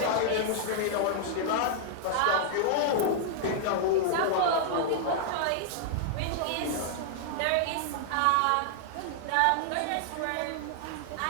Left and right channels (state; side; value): different; both; correlation -0.01